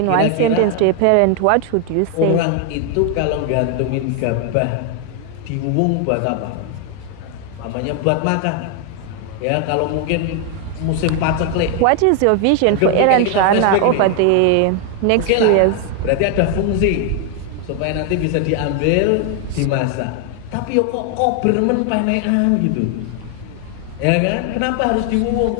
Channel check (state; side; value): different; both; correlation 0.01